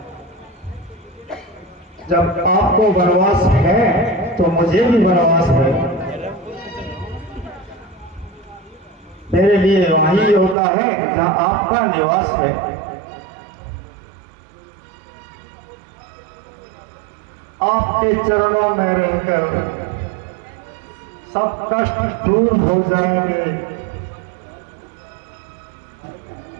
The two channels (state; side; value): drops out; left; at 10.6 s